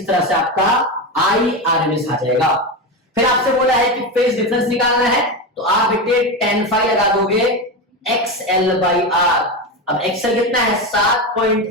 तरह से आपका आई आरएमएस आ जाएगा। फिर आपसे बोला है कि फेज डिफरेंस निकालना है, तो आप बेटे tan phi लगा दोगे XL/R। अब XL कितना है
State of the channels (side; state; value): both; normal; correlation 0.17